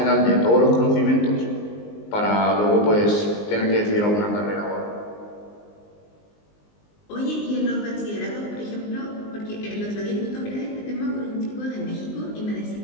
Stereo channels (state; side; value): late; right; 19 ms